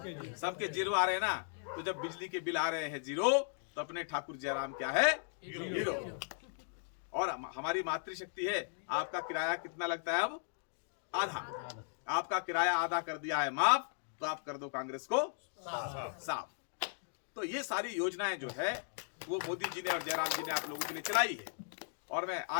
सबके जीरो आ रहे हैं ना। तो जब बिजली के बिल आ रहे हैं जीरो तो अपने ठाकुर जयराम क्या है, हीरो। और हमारी मातृशक्ति है, आपका किराया कितना लगता है अब, आधा। आपका किराया आधा कर दिया है माफ, तो आप कर दो कांग्रेस को साफ। तो ये सारी योजनाएं जो है वो मोदी जी ने और जयराम जी ने आप लोगों के लिए चलाई है। और मैं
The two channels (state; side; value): silent; right; digital silence